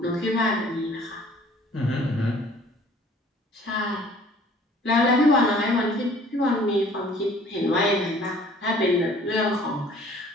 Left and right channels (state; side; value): normal; both; correlation 0.54